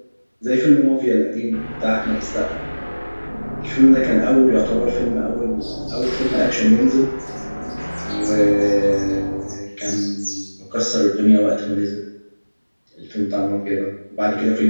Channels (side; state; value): both; inverted; correlation -1.00